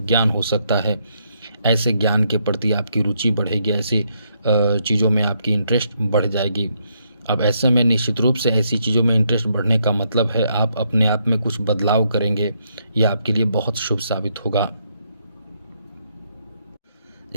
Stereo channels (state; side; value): inverted; both; correlation -0.75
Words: ज्ञान हो सकता है। ऐसे ज्ञान के प्रति आपकी रुचि बढ़ेगी, ऐसी चीज़ों में आपकी इंटरेस्ट बढ़ जाएगी। अब ऐसे में निश्चित रूप से ऐसी चीज़ों में इंटरेस्ट बढ़ने का मतलब है आप अपने आप में कुछ बदलाव करेंगे, यह आपके लिए बहुत शुभ साबित होगा।